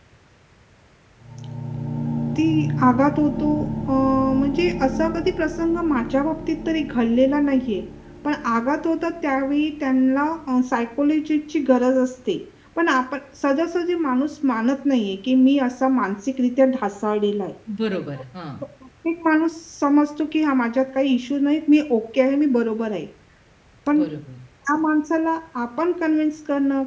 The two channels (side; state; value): both; identical; correlation 1.00